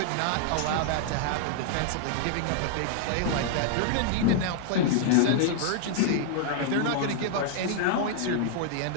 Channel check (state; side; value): different; both; correlation 0.00